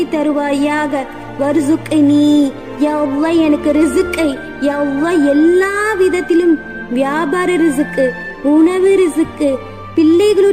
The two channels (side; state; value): both; identical; correlation 1.00